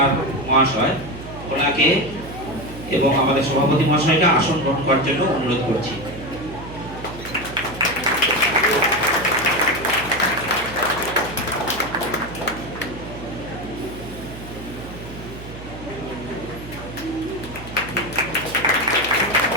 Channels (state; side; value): noise; right; hum, 13 dB below the sound